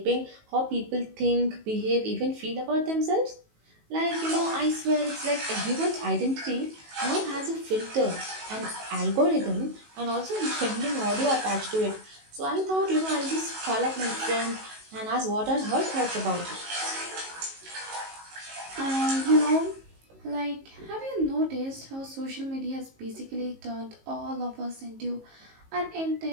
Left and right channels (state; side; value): late; left; 19 ms